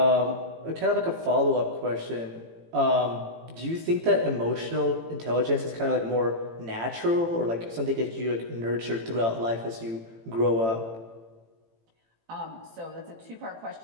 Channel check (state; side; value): late; left; 18 ms